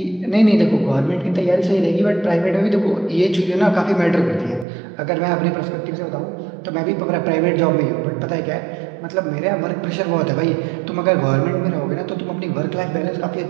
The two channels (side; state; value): left; drops out; at 4.7 s